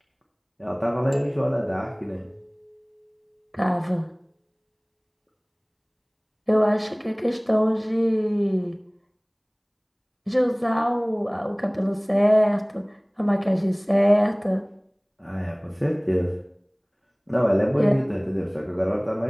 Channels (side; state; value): both; identical; correlation 1.00